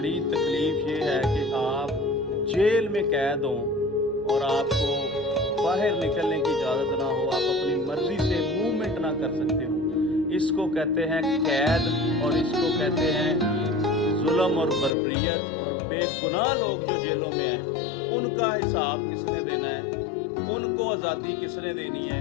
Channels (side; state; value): right; drops out; at 14.9 s